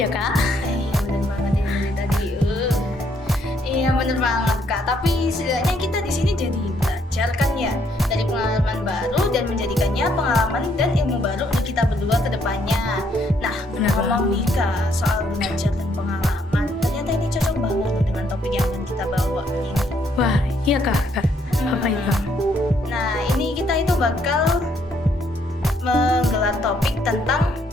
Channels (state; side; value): normal; both; correlation 0.70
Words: kak. Iya bener banget ini dari tadi. Iya bener banget kak. Tapi setidaknya kita di sini jadi belajar kan ya dari pengalaman baru dan menjadikannya pengalaman dan ilmu baru untuk kita berdua ke depannya. Nah, Bener ngomong nih kak soal belajar dan pengalaman, ternyata ini cocok banget loh dengan topik yang akan kita bawa kali ini. Wah iya kak. Apa itu? Nah, ini kita itu bakal menggelar topik tentang